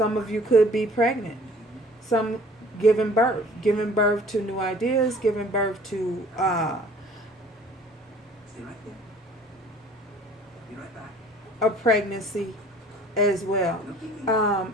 of you could be pregnant. Some giving birth to new ideas, giving birth to a pregnancy as well.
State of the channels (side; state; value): both; normal; correlation 0.51